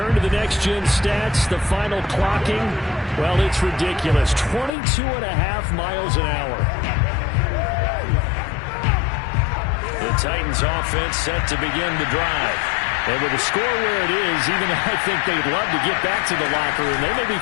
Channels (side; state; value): right; drops out; at 4.7 s